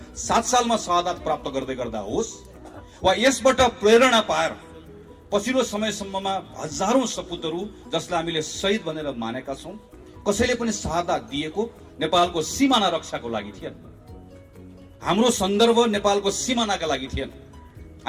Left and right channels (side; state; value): both; identical; correlation 1.00